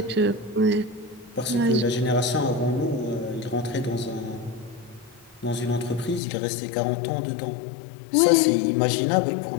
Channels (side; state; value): right; drops out; at 6.2 s